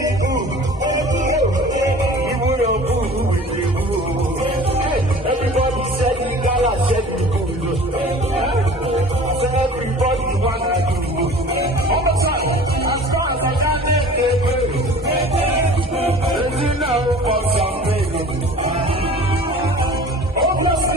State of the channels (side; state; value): both; normal; correlation 0.43